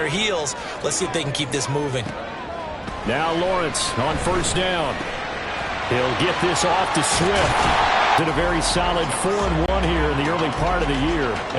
heels. Let's see if they can keep this moving. Now Lawrence on first down. He'll get this off to Swift. Did a very solid 4-1 here in the early part of the year.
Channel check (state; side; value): identical; both; correlation 1.00